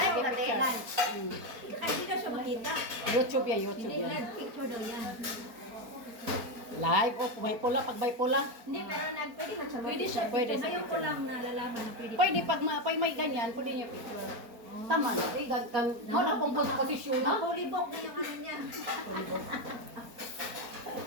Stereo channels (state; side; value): late; left; 4.4 ms